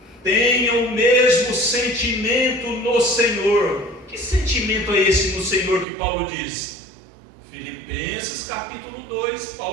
tenham o mesmo sentimento no Senhor. Que sentimento é esse no Senhor que Paulo diz? Filipenses capítulo 2,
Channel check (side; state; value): left; drops out; at 5.9 s